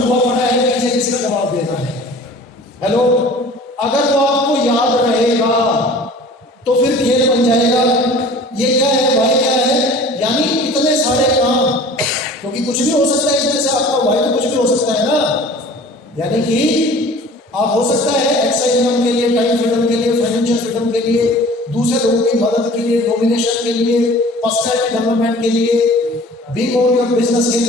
हुआ पड़ा है पीछे, जिसका जवाब देना है। हेलो, अगर वो आपको याद रहेगा तो फिर खेल बन जाएगा। ये क्या है, भाई क्या है, यानी इतने सारे काम, क्योंकि कुछ भी हो सकता है इसमें से, आपका भाई तो कुछ भी हो सकता है ना, यानी कि आप हो सकता है एक्स्ट्रा इनकम के लिए, टाइम फ्रीडम के लिए, फाइनेंशियल फ्रीडम के लिए, दूसरे लोगों की मदद के लिए, डोमिनेशन के लिए, पर्सनैलिटी डेवलपमेंट के लिए, बिग ओन योर बिजनेस के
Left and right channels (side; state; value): both; normal; correlation 0.45